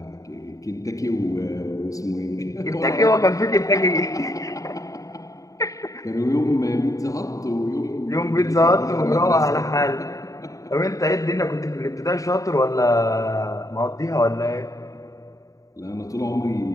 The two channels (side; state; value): right; late; 0.16 ms